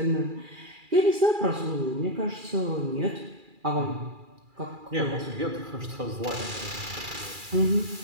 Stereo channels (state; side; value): late; left; 2.4 ms